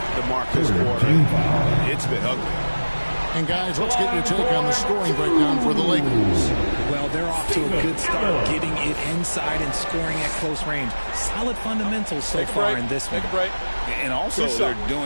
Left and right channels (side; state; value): both; inverted; correlation -1.00